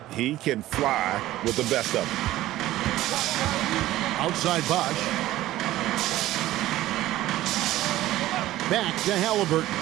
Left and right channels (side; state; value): left; quieter; 15.4 dB